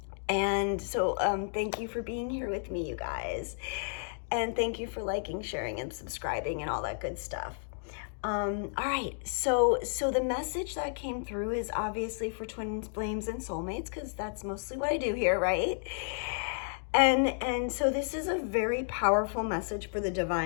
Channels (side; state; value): right; silent; digital silence